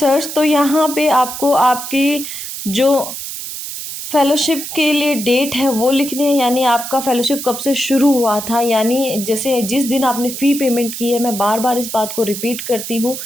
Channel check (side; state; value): right; noise; hiss, 8 dB below the sound